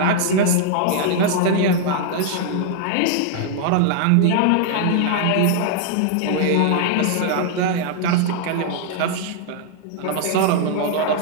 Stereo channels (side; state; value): both; different; correlation 0.00